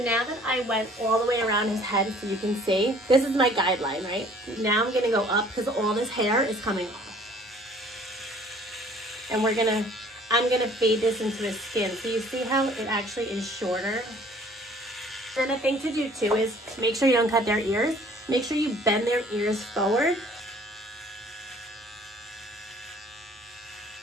that I went all the way around his head, so you can see, this is my guideline, right? Now I'm gonna go up because all this hair is coming off. And I'm gonna fade this into his skin. So you see how it actually is shorter? And a thing to do too is make sure you don't cut their ears. Make sure you bend their ears forward.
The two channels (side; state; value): both; normal; correlation 0.55